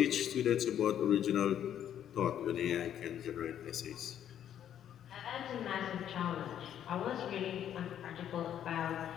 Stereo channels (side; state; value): right; quieter; 10.1 dB